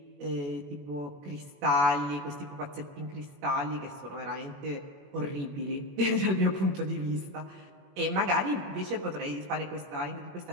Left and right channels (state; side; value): late; left; 21 ms